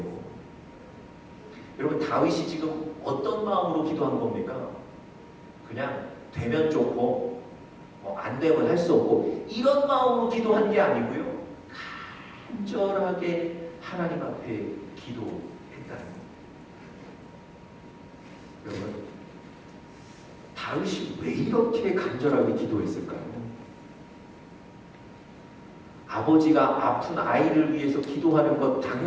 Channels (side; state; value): both; identical; correlation 1.00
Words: 여러분, 다윗이 지금 어떤 마음으로 기도한 겁니까? 그냥 되면 좋고 안 되면 할 수 없고 이런 마음으로 기도한 게 아니고요, 간절하게 하나님 앞에 기도했다는 겁니다. 여러분, 다윗이 왜 이렇게 간절하게 기도했을까요? 아버지가 아픈 아이를 위해서 기도하는 것